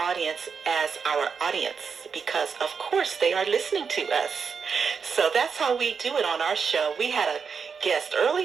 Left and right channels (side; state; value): left; quieter; 5.9 dB